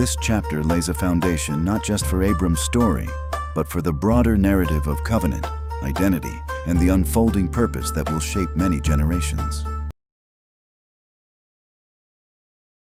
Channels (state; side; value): identical; both; correlation 1.00